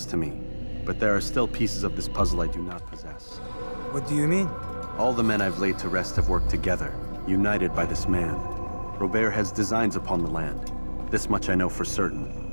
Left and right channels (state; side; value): inverted; both; correlation -1.00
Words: to me. But there are still pieces of this puzzle I do not possess. What do you mean? All the men I've laid to rest have worked together, united by this man. Robert has designs upon the land. This much I know for